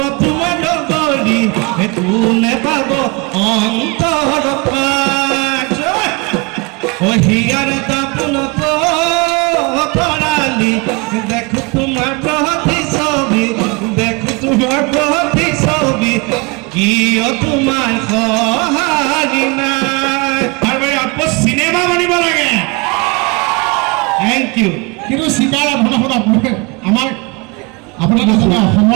লগৰী কোনে পাব অন্তৰ ও হিয়াৰ দাপনত তৰালি দেখো তোমাৰ প্ৰতি ছবি দেখো তোমাৰ প্ৰতি ছবি কিয় তোমাৰ সহাৰি নাই আৰু আপো সিনেমা বনিব লাগে থ্যাংক ইউ কিন্তু চিকাৰ আমাৰ আপোনালোকে জানে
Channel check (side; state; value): left; quieter; 28.1 dB